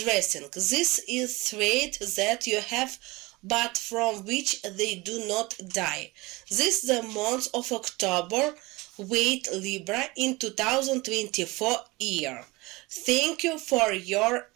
This is threat that you have but from which they do not die. This is the month of October. Wait Libra in 2024 year. Thank you for your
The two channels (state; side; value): quieter; left; 22.8 dB